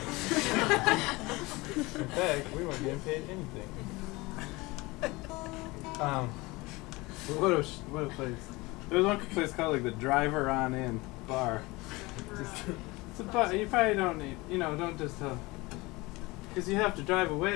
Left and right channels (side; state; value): right; quieter; 22.8 dB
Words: fact, we weren't getting paid anything. What a place. There was one place called like the Driver On In Bar. It's a bar. You probably don't need. Don't just because you have to drive